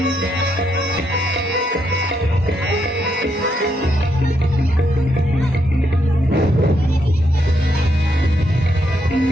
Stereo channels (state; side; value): normal; both; correlation 0.78